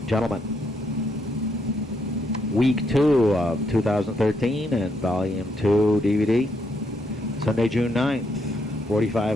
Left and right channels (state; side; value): normal; both; correlation 0.77